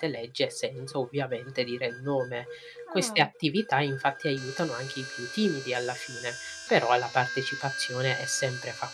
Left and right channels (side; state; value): both; identical; correlation 1.00